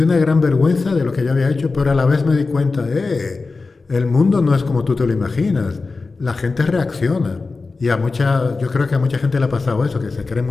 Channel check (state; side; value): quieter; right; 4.0 dB